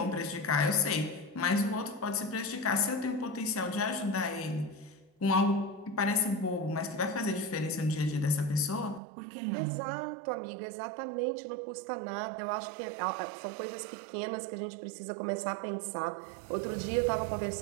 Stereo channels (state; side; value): drops out; left; at 9.0 s